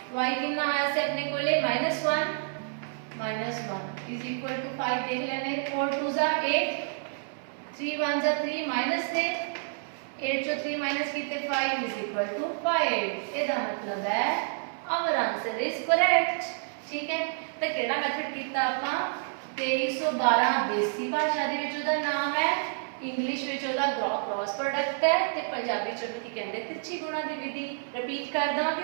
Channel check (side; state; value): left; silent; 59 dB below the other